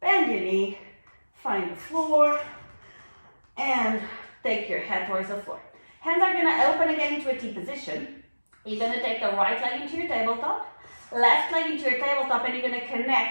Bend your knee. Find the floor. And take your head towards the floor. Hands are going to open again into a T position. You're going to take the right leg into your tabletop. Left leg into your tabletop, and you're going to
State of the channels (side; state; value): both; inverted; correlation -1.00